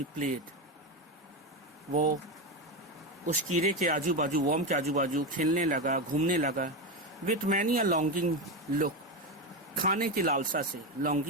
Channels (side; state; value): both; normal; correlation 0.14